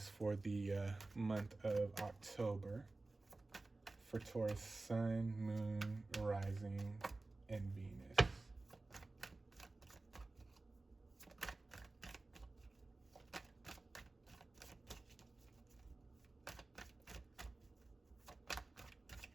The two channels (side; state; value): left; quieter; 3.2 dB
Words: for the month of October? For Taurus, Sun, Moon, Rising, and Venus.